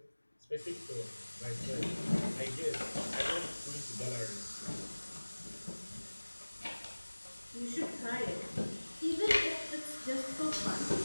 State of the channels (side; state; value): both; inverted; correlation -1.00